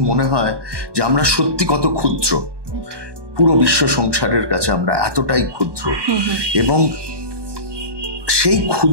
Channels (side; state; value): left; late; 1.2 ms